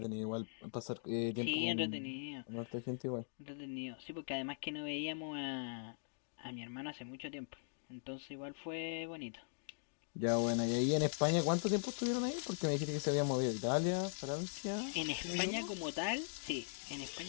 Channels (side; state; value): right; silent; digital silence